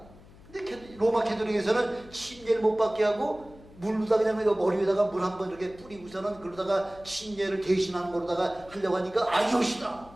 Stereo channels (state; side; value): noise; left; hum, 22 dB below the sound